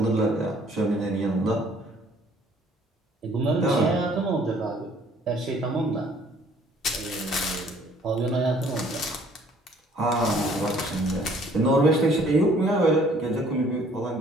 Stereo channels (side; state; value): both; normal; correlation 0.58